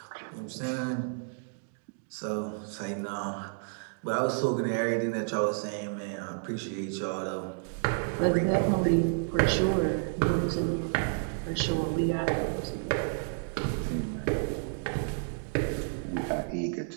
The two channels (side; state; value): left; silent; digital silence